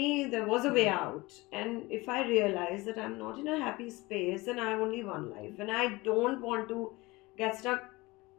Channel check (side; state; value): right; quieter; 22.2 dB